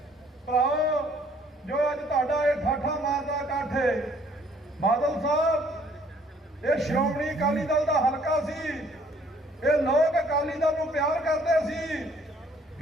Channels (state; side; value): normal; both; correlation 0.61